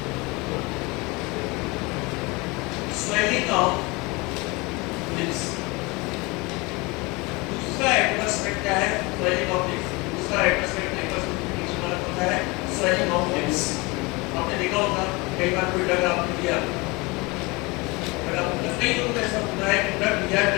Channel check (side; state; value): right; quieter; 25.5 dB